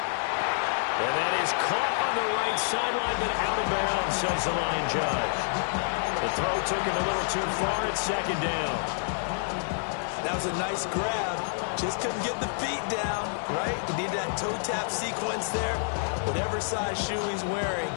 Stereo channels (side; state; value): right; silent; digital silence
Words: And that is caught on the right sideline, but out of bounds, says the line judge. The throw took him a little too far at second down. That was a nice grab. Just couldn't get the feet down, right? He needed that toe tap sequence there. Whatever size shoe he's wearing,